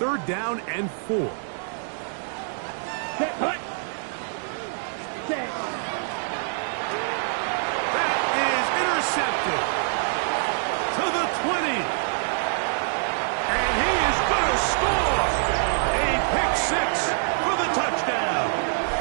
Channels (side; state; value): left; silent; digital silence